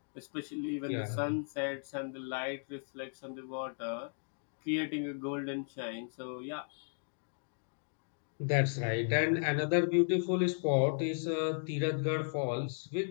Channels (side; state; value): right; silent; digital silence